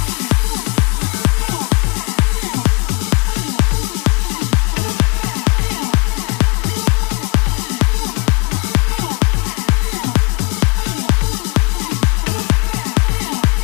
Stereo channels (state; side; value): quieter; right; 28.6 dB